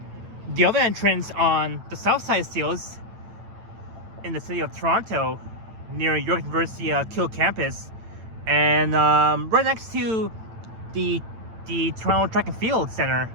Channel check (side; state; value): left; late; 9.0 ms